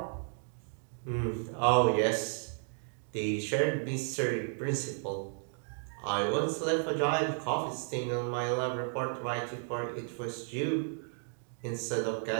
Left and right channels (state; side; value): silent; left; 56 dB below the other